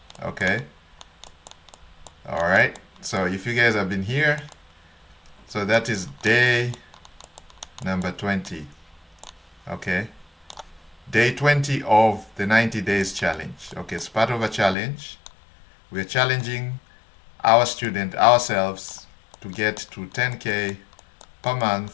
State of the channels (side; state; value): right; drops out; at 14.8 s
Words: Okay. All right. So if you guys have been here, so that is day number 20. Okay. Day 20 of the 90 days challenge. Okay, it's part of a challenge. We're challenging our student, ourselves, to get to 10K per month